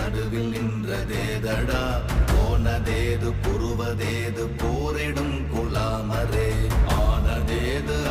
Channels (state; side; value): identical; both; correlation 1.00